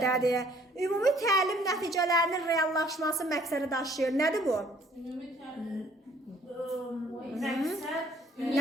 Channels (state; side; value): normal; both; correlation 0.59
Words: Ümumi təlim nəticələrinin reallaşması məqsədi daşıyır. Nədir bu?